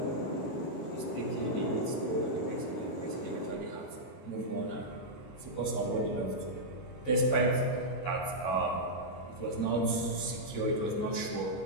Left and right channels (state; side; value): late; right; 23 ms